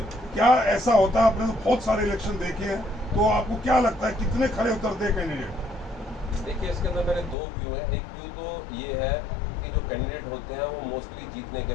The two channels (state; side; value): drops out; right; at 7.4 s